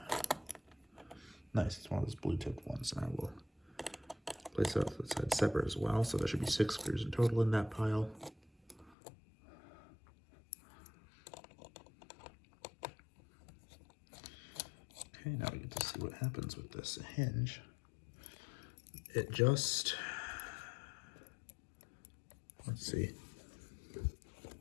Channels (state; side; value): drops out; right; at 9.0 s